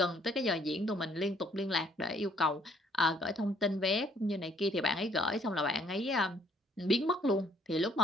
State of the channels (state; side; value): normal; both; correlation 0.64